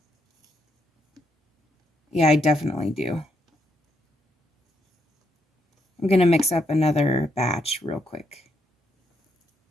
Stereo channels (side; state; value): both; normal; correlation 0.77